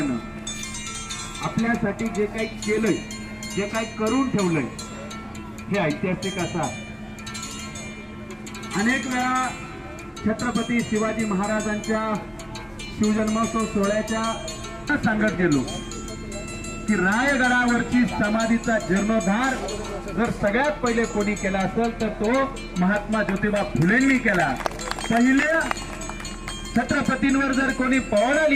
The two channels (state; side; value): identical; both; correlation 1.00